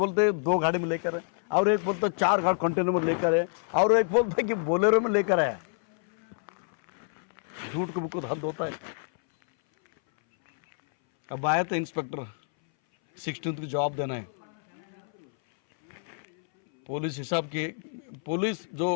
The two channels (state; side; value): silent; right; 59 dB below the other